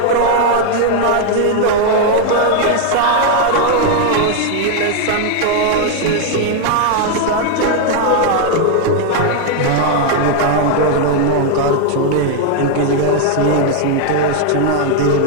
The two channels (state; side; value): different; both; correlation 0.00